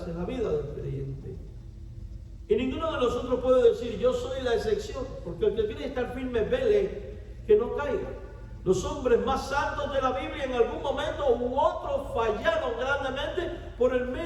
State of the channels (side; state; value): both; identical; correlation 1.00